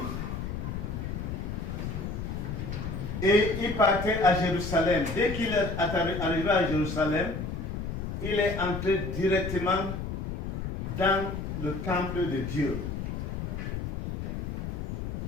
et il partait à Jérusalem. Dès qu'il est arrivé à Jérusalem, il est entré directement dans le temple de Dieu.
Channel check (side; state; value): left; noise; rumble, 4 dB below the sound